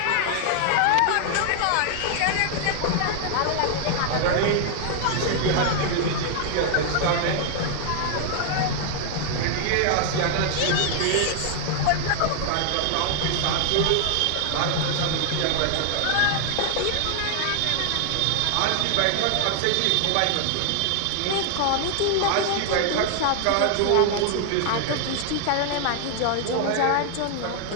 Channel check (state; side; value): different; both; correlation 0.00